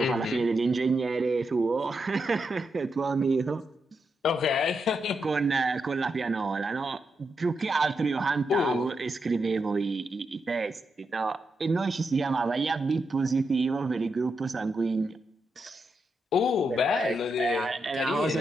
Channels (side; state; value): both; normal; correlation 0.84